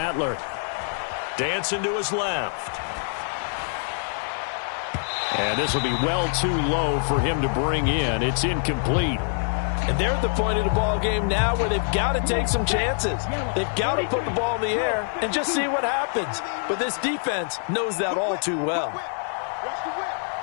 Dancing to his left. And this will be well too low for him to bring in. It's incomplete. And they're at the point of the ball game now where they've got to take some chances. They've got to put the ball in the air and just see what happens. But this defense knows that all too well.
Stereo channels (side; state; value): right; silent; 62 dB below the other